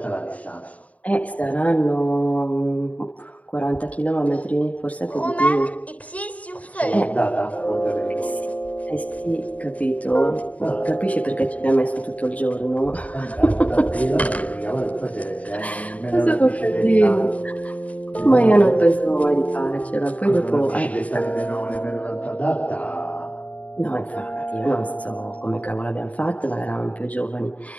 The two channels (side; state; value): right; late; 0.069 ms